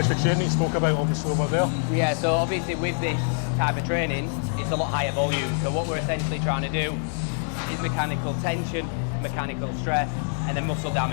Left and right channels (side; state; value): right; silent; 56 dB below the other